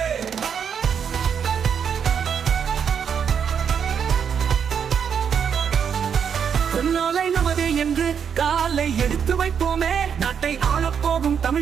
நாளை நமது என்று காலை எடுத்து வைப்போமே, நாட்டை ஆளப்போகும்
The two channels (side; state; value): left; quieter; 7.4 dB